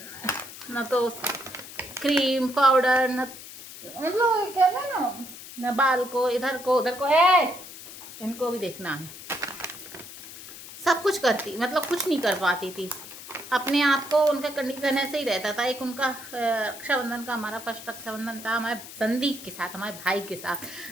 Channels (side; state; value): left; noise; hiss, 14 dB below the sound